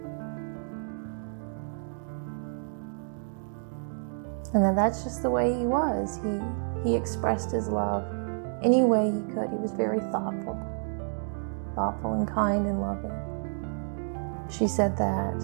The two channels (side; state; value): left; silent; digital silence